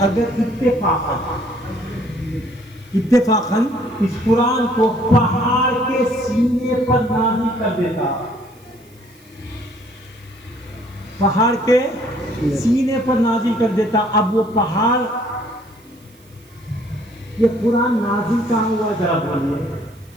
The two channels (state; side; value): noise; right; hiss, 29 dB below the sound